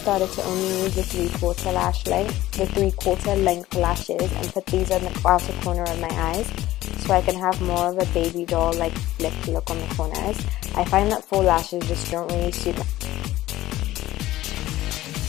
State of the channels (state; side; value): quieter; right; 15.7 dB